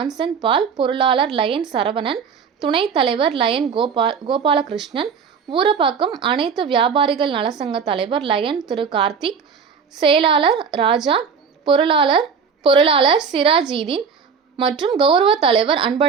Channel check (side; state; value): left; quieter; 6.3 dB